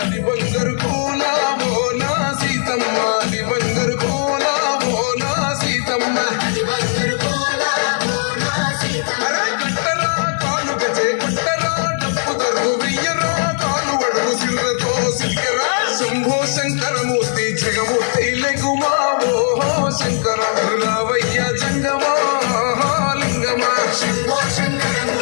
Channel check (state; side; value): silent; right; 62 dB below the other